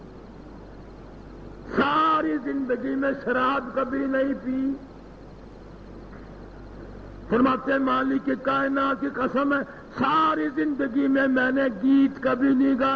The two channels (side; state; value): both; identical; correlation 1.00